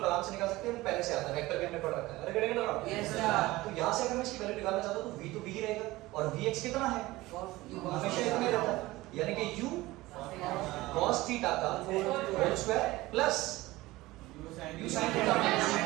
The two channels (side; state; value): left; quieter; 19.0 dB